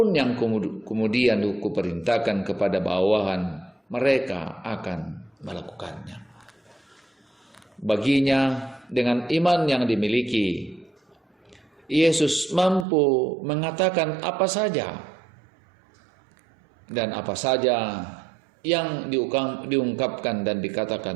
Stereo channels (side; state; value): left; drops out; at 12.9 s